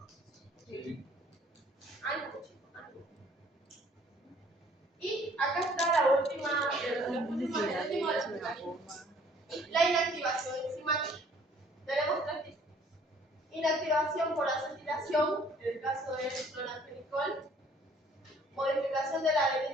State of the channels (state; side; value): normal; both; correlation 0.58